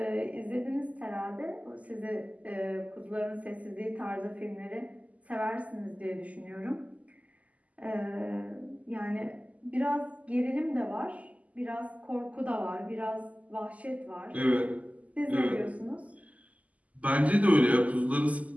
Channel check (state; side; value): late; left; 0.072 ms